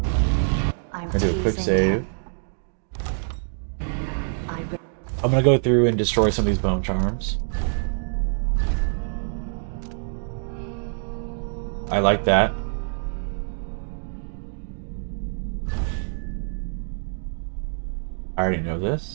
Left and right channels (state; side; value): silent; left; digital silence